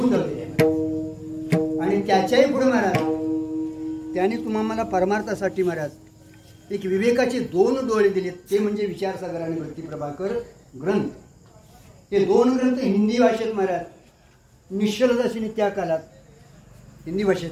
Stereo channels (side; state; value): both; identical; correlation 1.00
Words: धरलेली आहे. आणि त्याच्याही पुढे महाराज त्याने तुम्हाला परमार्थासाठी महाराज एक विवेकाचे 2 डोळे दिलेत. ते म्हणजे विचारसागर आणि भक्तिप्रभाकर ग्रंथ. हे 2 ग्रंथ हिंदी भाषेत महाराज निश्चलदासीने त्या काळात हिंदी भाषेत